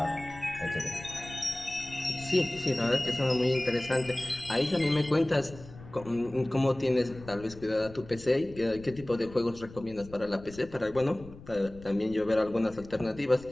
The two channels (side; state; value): left; noise; rumble, 18 dB below the sound